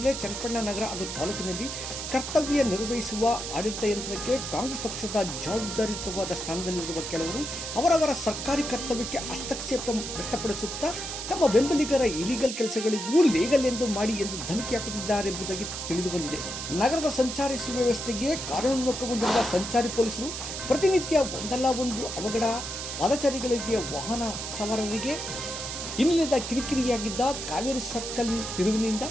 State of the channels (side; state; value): right; noise; hiss, 6 dB below the sound